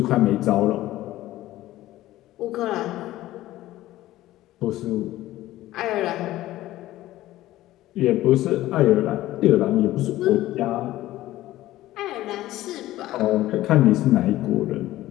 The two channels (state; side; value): quieter; right; 15.5 dB